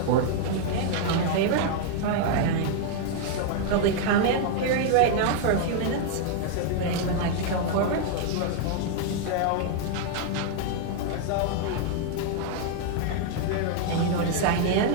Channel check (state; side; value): different; both; correlation 0.00